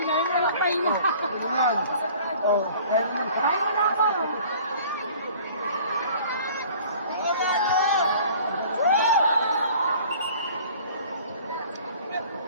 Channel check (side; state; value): both; inverted; correlation -0.49